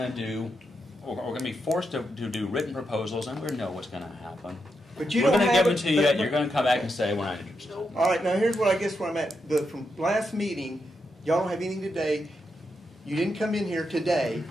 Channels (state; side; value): normal; both; correlation 0.84